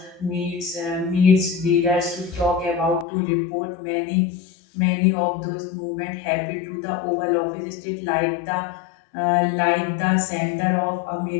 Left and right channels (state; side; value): drops out; right; at 3.1 s